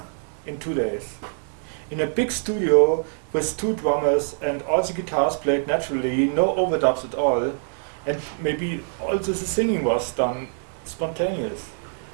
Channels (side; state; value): left; silent; digital silence